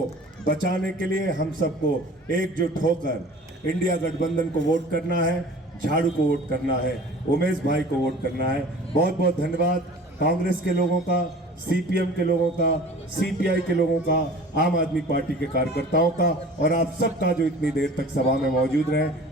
बचाने के लिए हम सबको एकजुट होकर इंडिया गठबंधन को वोट करना है, झाड़ू को वोट करना है, उमेश भाई को वोट करना है। बहुत बहुत धन्यवाद कांग्रेस के लोगों का, सीपीएम के लोगों का, सीपीआई के लोगों का, आम आदमी पार्टी के कार्यकर्ताओं का और आप सबका जो इतनी देर तक सभा में मौजूद रहे।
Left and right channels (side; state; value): both; normal; correlation 0.44